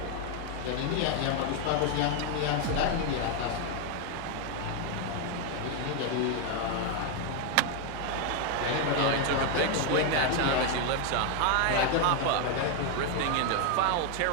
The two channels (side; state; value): both; different; correlation 0.01